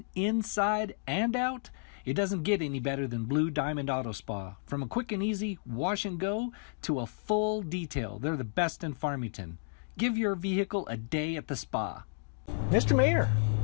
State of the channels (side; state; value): right; silent; digital silence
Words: inside and out, it doesn't get any better than Blue Diamond Auto Spa. From a quick and easy wash and go to a full detail, they're the best in Farmington. Give your vehicle a day at the spa. Mr. Mayor,